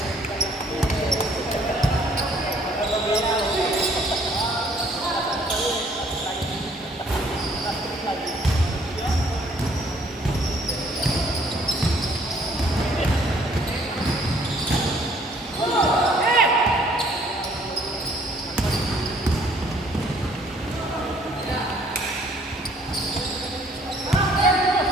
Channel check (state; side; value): normal; both; correlation 0.61